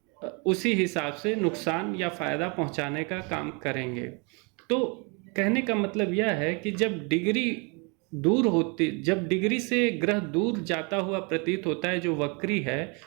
उसी हिसाब से नुकसान या फ़ायदा पहुँचाने का काम करेंगे। तो कहने का मतलब यह है कि जब डिग्री से ग्रह दूर जाता हुआ प्रतीत होता है जो वक्री है,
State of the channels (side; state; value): left; quieter; 32.3 dB